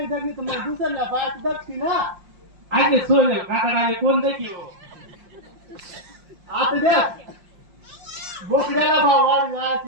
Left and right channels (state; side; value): late; left; 5.6 ms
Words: जगली तर मग दुसऱ्या बायात जगती ना आगे सोले काकडाले कोण देखी हो आता द्या बोकड्याला भाव वाढ